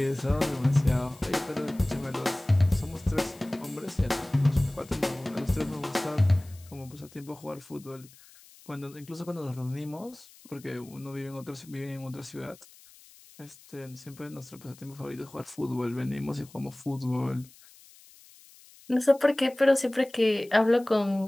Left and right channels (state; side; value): noise; left; hiss, 24 dB below the sound